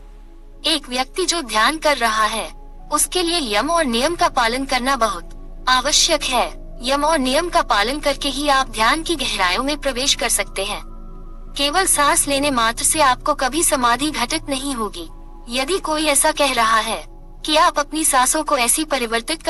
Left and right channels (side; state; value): both; identical; correlation 1.00